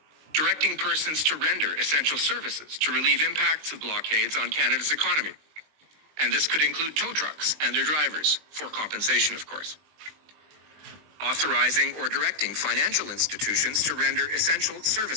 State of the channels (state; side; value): late; left; 20 ms